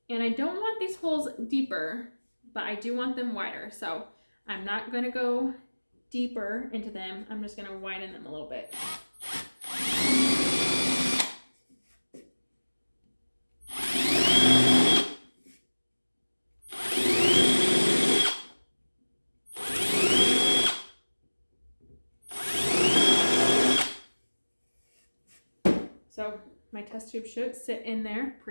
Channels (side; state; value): both; inverted; correlation -1.00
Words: And I don't want these holes deeper, but I do want them wider. So I'm not going to go deeper into them. I'm just going to widen them a little bit. So my test tube should sit in there